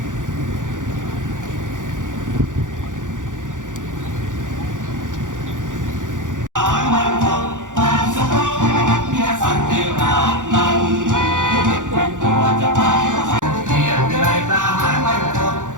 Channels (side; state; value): left; late; 0.87 ms